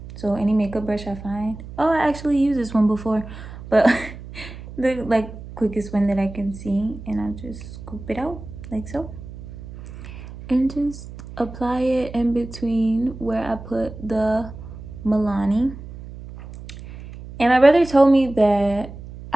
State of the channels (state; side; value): noise; right; hum, 13 dB below the sound